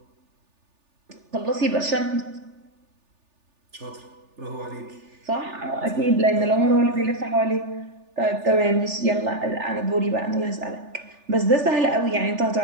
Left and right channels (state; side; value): late; left; 3.4 ms